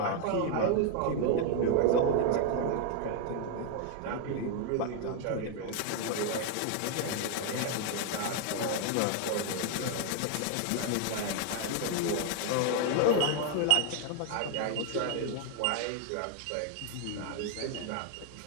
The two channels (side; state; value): both; different; correlation 0.00